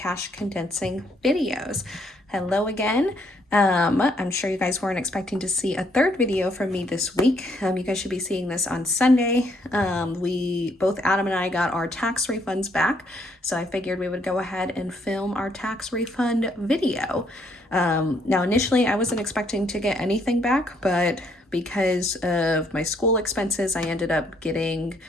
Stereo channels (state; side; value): normal; both; correlation 0.70